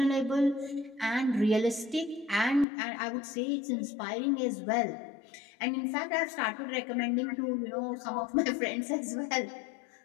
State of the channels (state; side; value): drops out; right; at 2.7 s